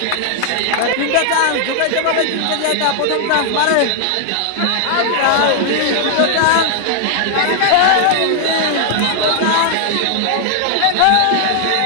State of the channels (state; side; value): different; both; correlation 0.00